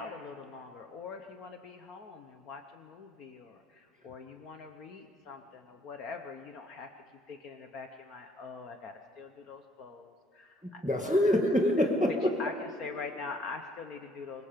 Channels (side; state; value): both; normal; correlation 0.65